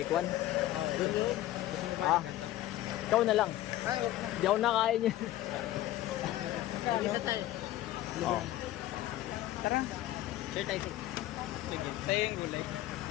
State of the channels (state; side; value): quieter; right; 14.7 dB